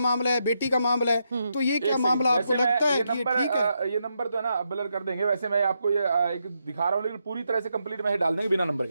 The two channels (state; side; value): inverted; both; correlation -0.82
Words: है, बेटी का मामला है। तो ये क्या मामला आपको लगता है कि ठीक है? ये नंबर तो है ना ब्लर कर देंगे। वैसे मैं आपको ये एक दिखा रहा हूँ, लेकिन पूरी तरह से कंप्लीट मैसेज डाल देंगे बिना नंबर